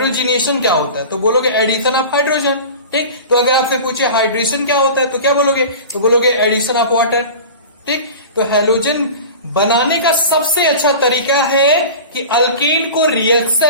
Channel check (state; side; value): inverted; both; correlation -0.35